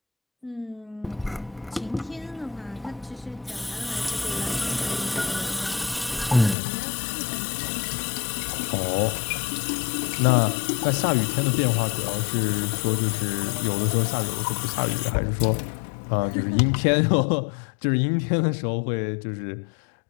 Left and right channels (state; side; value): drops out; right; at 6.6 s